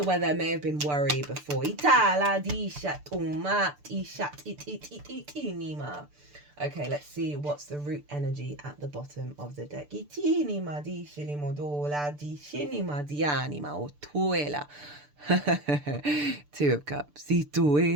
where there may have been worry before. Okay, let's see what's the root energy at the bottom of the deck. Two of Cups.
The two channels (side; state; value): left; late; 6.8 ms